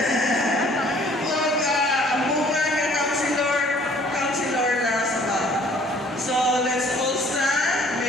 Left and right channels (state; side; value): normal; both; correlation 0.57